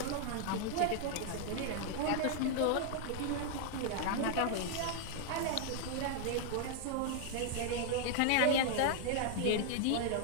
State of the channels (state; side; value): different; both; correlation 0.00